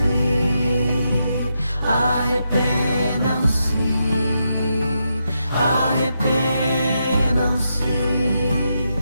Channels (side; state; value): both; inverted; correlation -0.83